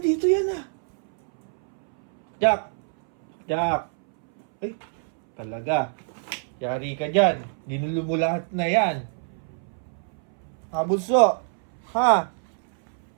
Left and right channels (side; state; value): left; silent; 61 dB below the other